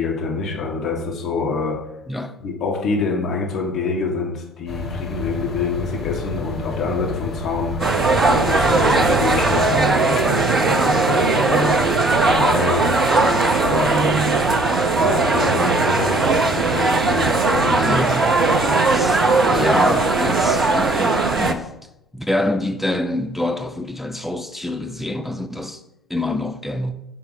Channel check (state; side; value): normal; both; correlation 0.58